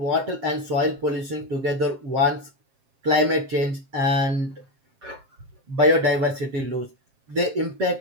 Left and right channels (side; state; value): left; late; 7.5 ms